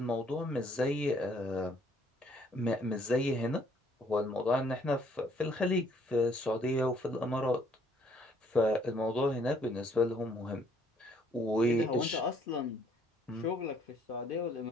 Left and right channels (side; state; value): both; normal; correlation 0.64